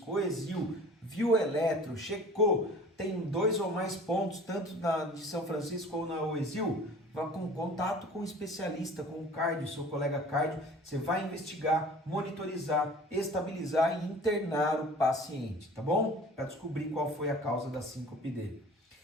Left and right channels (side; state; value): both; normal; correlation 0.45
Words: o ESIL, viu o eletro, checou, tem 2 ou mais pontos, tanto na de São Francisco ou na OESIL, vá com contato com o especialista, com o cardio, seu colega cardio, você vai investigar, monitorizar, estabilizar e internar o paciente, tá bom? Para descobrir qual foi a causa da síncope dele.